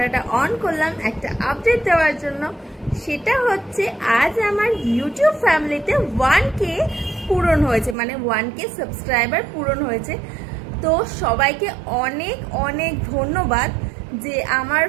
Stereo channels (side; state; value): left; drops out; at 8.0 s